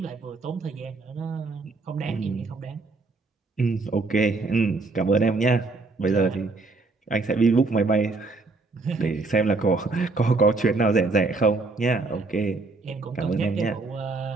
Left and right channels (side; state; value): left; quieter; 3.7 dB